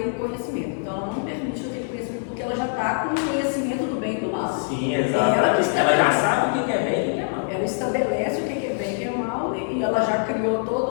conhecimento, então ela não permite aquele conhecimento porque ela já está com o conhecimento do bem e do mal. Sim, exato. Ela já sabe o que é bem e o que é mal. Ela estabelece o que é bem e o que é mal, e ela já criou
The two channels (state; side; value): silent; right; digital silence